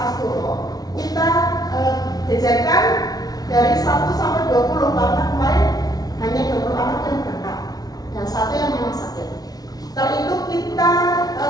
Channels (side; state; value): right; late; 0.19 ms